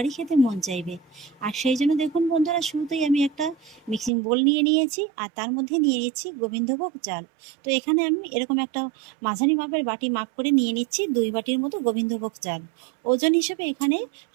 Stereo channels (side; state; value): left; drops out; at 4.1 s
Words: খেতে মন চাইবে। আর সেই জন্য দেখুন বন্ধুরা, শুরুতেই আমি একটা মিক্সিং বোল নিয়ে নিয়েছি, আর তার মধ্যে নিয়ে নিচ্ছি গোবিন্দভোগ চাল। তো এখানে আমি এরকম একটা মাঝারি মাপের বাটি মাপ করে নিয়ে নিচ্ছি 2 বাটির মতো গোবিন্দভোগ চাল। ওজন হিসেবে এখানে